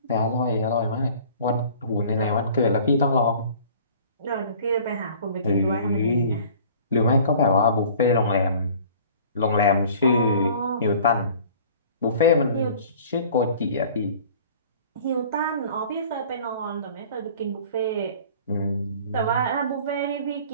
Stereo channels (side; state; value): both; inverted; correlation -0.48